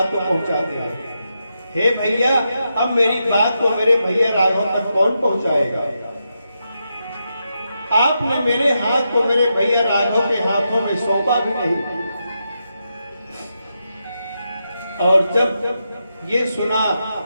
को पहुंचाते हैं। हे भैया, अब मेरी बात को मेरे भैया राघव तक कौन पहुंचाएगा? आपने मेरे हाथ को मेरे भैया राघव के हाथों में सौंपा भी नहीं। और जब ये सुना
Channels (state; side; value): inverted; both; correlation -0.86